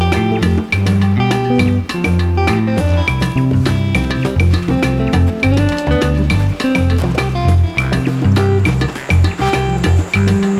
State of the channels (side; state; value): both; identical; correlation 1.00